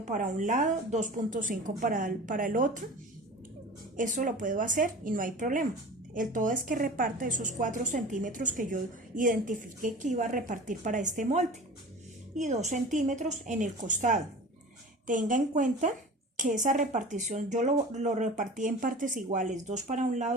para un lado, 2,5 para el otro. Eso lo puedo hacer y no hay problema. El todo es que reparta esos 4 centímetros que yo identifiqué que iba a repartir para este molde y 2 centímetros en el costado. Tenga en cuenta que esa repartición yo lo repartí en partes iguales, 2 para un lado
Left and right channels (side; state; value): both; normal; correlation 0.38